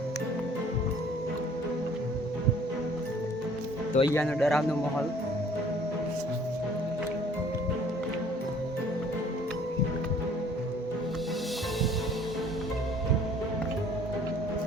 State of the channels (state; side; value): normal; both; correlation 0.55